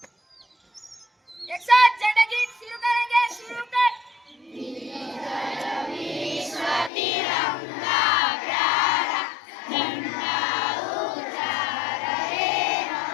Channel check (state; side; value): drops out; right; at 6.9 s